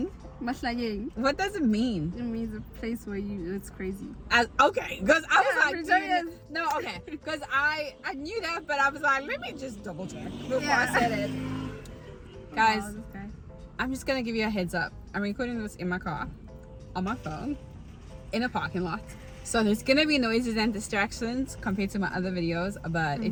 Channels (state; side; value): identical; both; correlation 1.00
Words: Mahlanyeng. What does it mean? It means a place where it's crazy. Okay, because I was like, Pretoria. no, okay, because I knew that, but I was like, let me just double check before I said it. Guys, Wow, this guy. I'm just gonna give you a heads up. I'm recording this in my car, on my phone, in a parking lot. So there's gonna be noises and distractions compared to my other videos, but